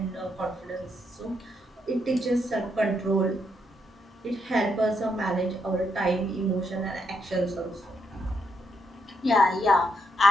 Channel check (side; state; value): both; normal; correlation 0.78